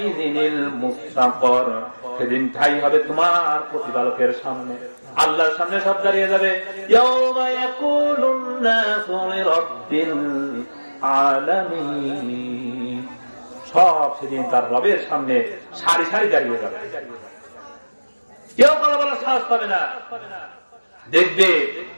মুস্তাকর, সেদিন ঠাই হবে তোমার প্রতিপালকের সামনে, আল্লাহর সামনে সব দাঁড়িয়ে যাবে। ইয়াউমা ইয়াকুলুন নাসু লিরাব্বিল আলামিন, সব সেদিন তার রবের সামনে সারি সারি দাঁড়িয়ে যাবে, কেউ কথা বলার সাহস পাবে না। দেখবে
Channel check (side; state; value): both; inverted; correlation -1.00